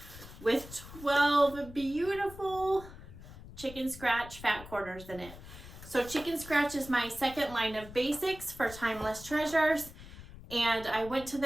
with 12 beautiful chicken scratch fat quarters in it. So chicken scratch is my second line of basics for timeless treasures, and I went to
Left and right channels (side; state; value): left; noise; rumble, 16 dB below the sound